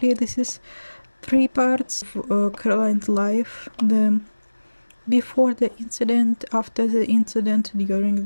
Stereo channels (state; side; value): inverted; both; correlation -1.00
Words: this is 3 parts of Caroline's life: the before the incident, after the incident, during